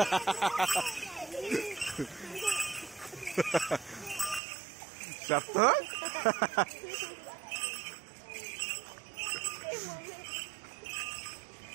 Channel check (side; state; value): left; drops out; at 4.4 s